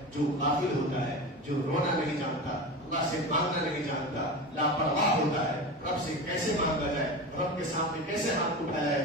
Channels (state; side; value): normal; both; correlation 0.27